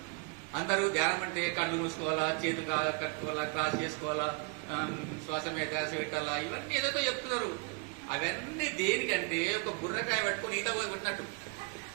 అందరూ ధ్యానం అంటే కళ్ళు మూసుకోవాలా, చేతులు కట్టుకోవాలా, క్రాస్ చేసుకోవాలా, శ్వాస మీద పెట్టాలా, ఇవన్నీ ఏదైతే చెప్తున్నారు. అవన్నీ దేనికంటే ఒక బుర్రకాయ పట్టుకొని ఈత కొట్టినట్టు.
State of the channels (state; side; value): quieter; left; 30.3 dB